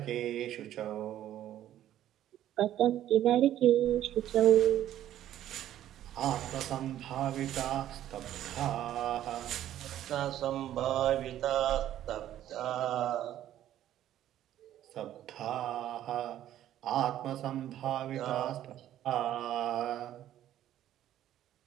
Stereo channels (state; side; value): quieter; left; 12.1 dB